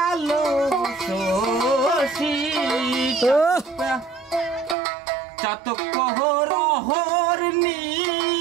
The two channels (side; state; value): left; drops out; at 4.8 s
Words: শশী, চাতক প্রহর